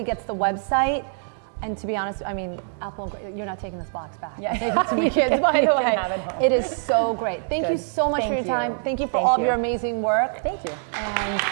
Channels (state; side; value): silent; left; digital silence